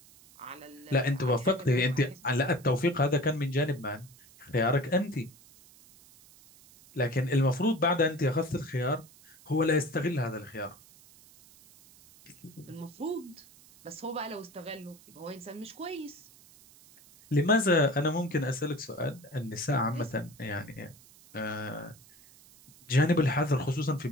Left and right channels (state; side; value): noise; right; hiss, 24 dB below the sound